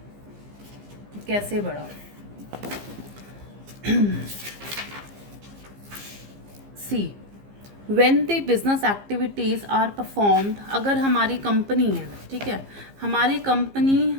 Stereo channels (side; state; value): left; late; 15 ms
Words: कैसे बढ़ा. See, when the business activities are performed, अगर हमारी कंपनी है, ठीक है, हमारी कंपनी